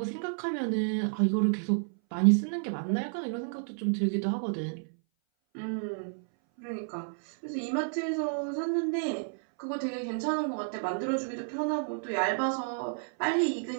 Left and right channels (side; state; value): left; silent; 57 dB below the other